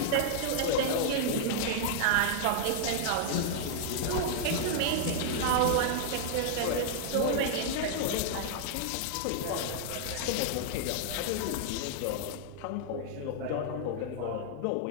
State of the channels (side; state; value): both; different; correlation -0.01